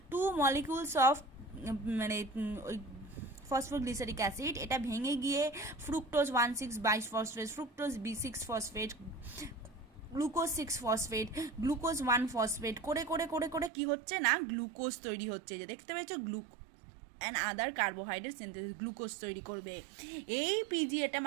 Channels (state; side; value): drops out; left; at 13.7 s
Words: 2 মলিকিউলস অফ মানে ওই ফসফোগ্লিসারিক অ্যাসিড, এটা ভেঙে গিয়ে fructose 1,6 bisphosphate, fructose B6 phosphate, glucose 6 phosphate, glucose 1 phosphate করে করে করে করে কি হচ্ছে না গ্লুকোজ তৈরি হচ্ছে, যে দেখতে পেয়েছো and other carbohydrate synthesis, glucose তৈরি করবে। এই পিজিএটা